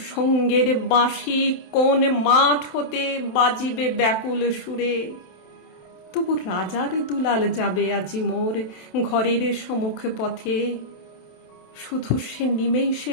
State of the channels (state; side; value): late; right; 28 ms